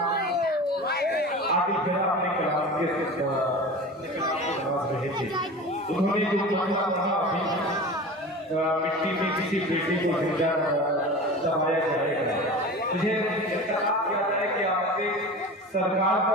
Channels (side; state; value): both; normal; correlation 0.34